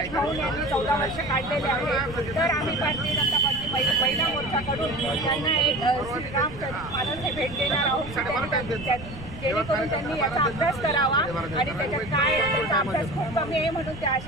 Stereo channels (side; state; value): right; noise; rumble, 14 dB below the sound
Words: खाऊन यांनी 14 वर्ष काढलेले आहे. तर आम्ही भारतीय जनता पार्टी महिला मोर्चाकडून त्यांना एक श्रीरामचरित मानस हे भेट देणार आहोत, जेणेकरून त्यांनी याचा अभ्यास करावा आणि त्याच्यात काय त्याचा अभ्यास खूप कमी आहे म्हणून ते